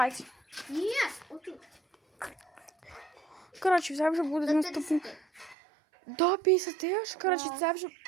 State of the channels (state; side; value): drops out; left; at 5.6 s